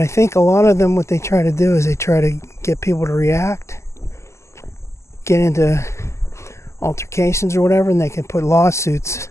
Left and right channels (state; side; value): late; right; 0.13 ms